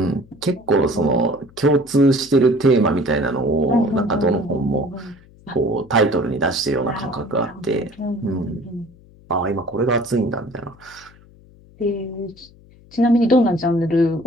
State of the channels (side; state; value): left; noise; hum, 25 dB below the sound